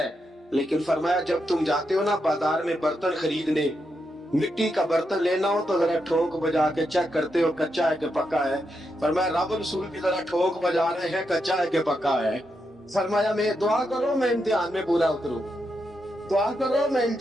لیکن فرمایا جب تم جاتے ہو نا بازار میں برتن خریدنے، مٹی کا برتن لینا ہو تو ذرا ٹھوک بجا کے چیک کرتے ہو کچا ہے کہ پکا ہے. فرمایا رب رسول بھی ذرا ٹھوک بجا رہے ہیں کچا ہے کہ پکا ہے. فرمایا میں دعا کرو میں امتحان میں پورا اتروں، دعا کرو میں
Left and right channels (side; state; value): both; normal; correlation 0.84